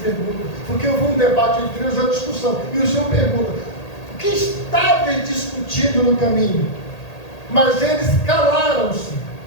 pergunta, porque houve um debate entre eles, a discussão, e o Senhor pergunta: o que estáveis discutindo no caminho? Mas eles calaram-se,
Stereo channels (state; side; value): late; right; 1.8 ms